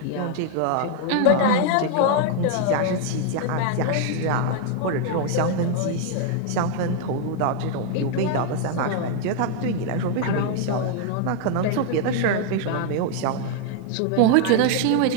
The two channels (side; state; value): both; different; correlation 0.00